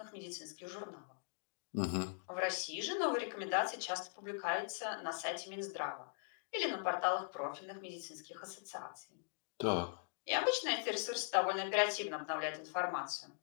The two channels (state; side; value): silent; right; digital silence